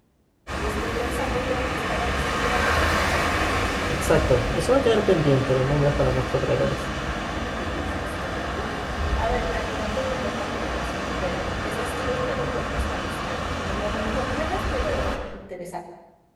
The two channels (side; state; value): both; identical; correlation 1.00